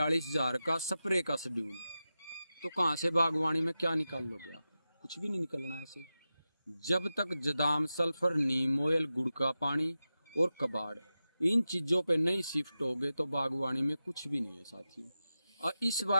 का स्प्रे का शेड्यूल, तो कहाँ से बागवानी में क्या निकाल लोगे आप? कुछ भी नहीं निकलना है ऐसे। जब तक जदाम, सल्फर, नीम ऑयल, गुड़ का पानी और कबाड़ इन चीज़ों पे नहीं शिफ्ट होगे तो बागवानी में कुछ भी नहीं है साथियों। और इस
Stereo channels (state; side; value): inverted; both; correlation -0.92